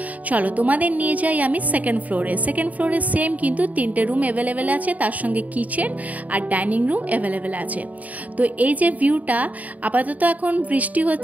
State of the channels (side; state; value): left; late; 0.073 ms